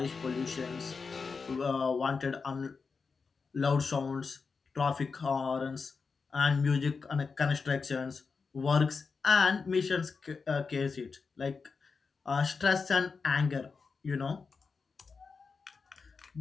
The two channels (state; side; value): quieter; right; 4.9 dB